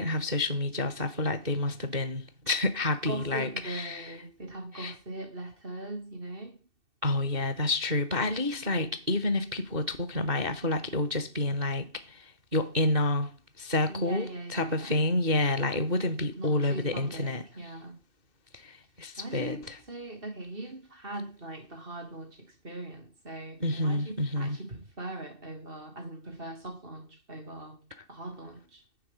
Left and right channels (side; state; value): left; late; 2.6 ms